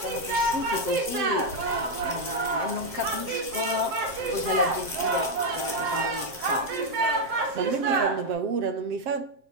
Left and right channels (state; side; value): late; left; 7.6 ms